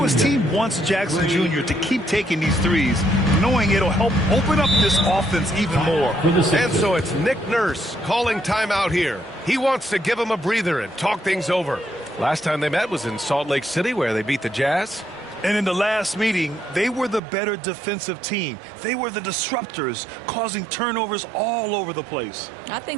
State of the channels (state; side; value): drops out; left; at 17.2 s